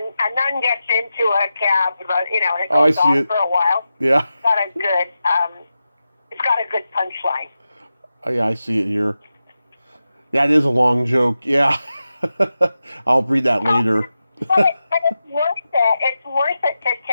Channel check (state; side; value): inverted; both; correlation -0.91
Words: nun gets into a cab, and it goes on for a while. Yeah. It's got a good punchline. Oh, yeah, I see it here. That is a long joke. Yeah. I'll read that later. But it's worth it. It's worth it to